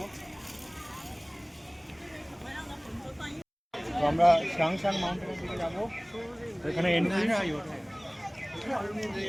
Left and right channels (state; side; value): identical; both; correlation 1.00